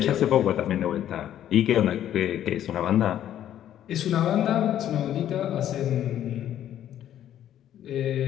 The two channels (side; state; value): right; quieter; 11.2 dB